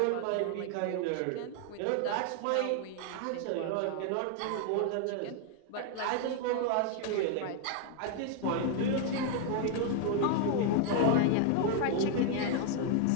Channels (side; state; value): both; different; correlation 0.00